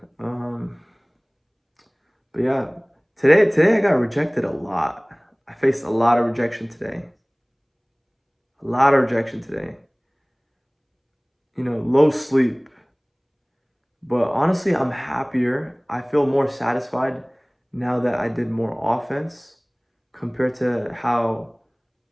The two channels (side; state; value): both; identical; correlation 1.00